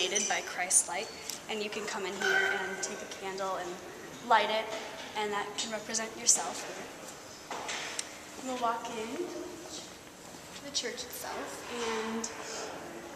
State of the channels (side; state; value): both; identical; correlation 1.00